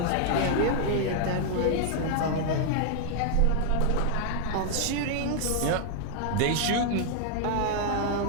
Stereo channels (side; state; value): both; different; correlation 0.00